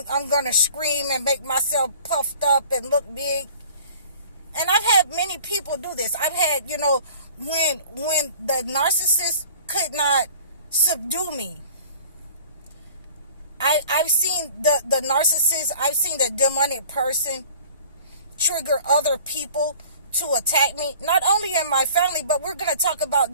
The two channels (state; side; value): inverted; both; correlation -0.48